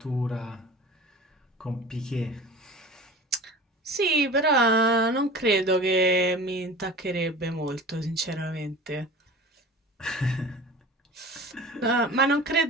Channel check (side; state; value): both; normal; correlation 0.37